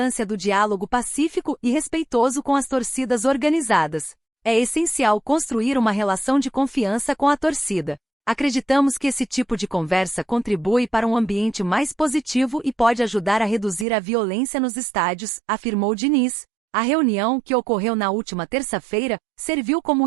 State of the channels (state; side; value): drops out; left; at 13.9 s